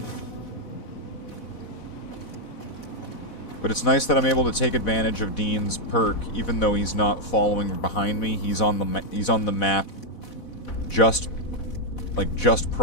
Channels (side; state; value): right; late; 4.1 ms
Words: But it's nice that I'm able to take advantage of Dean's perk, even though he's not following behind me. He's on the map just